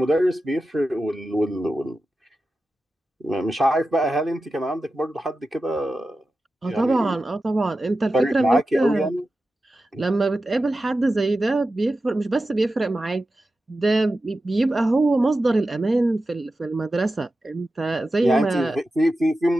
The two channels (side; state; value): both; normal; correlation 0.93